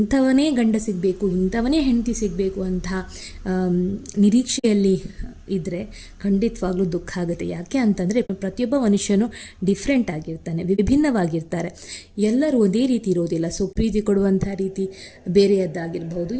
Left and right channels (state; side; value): identical; both; correlation 1.00